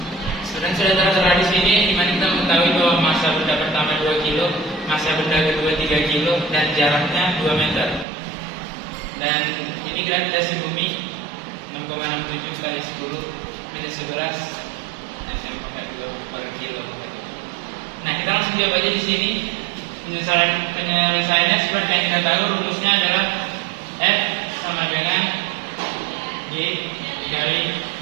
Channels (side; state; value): left; drops out; at 8.1 s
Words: sudah tertera di sini, di mana kita mengetahui bahwa massa benda pertama 2 kilo, massa benda kedua 3 kilo, dan jaraknya 2 meter. Dan ini gravitasi bumi 6,67 kali 10 minus 11 per kilo. Nah, kita langsung jawab aja di sini. Penyelesaiannya seperti yang kita tahu, rumusnya adalah F sama dengan G dikali